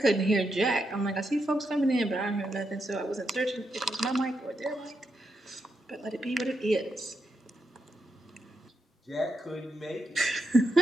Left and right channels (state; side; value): normal; both; correlation 0.83